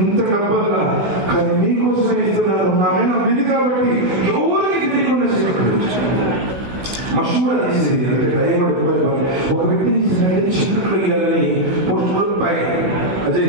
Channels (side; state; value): left; late; 16 ms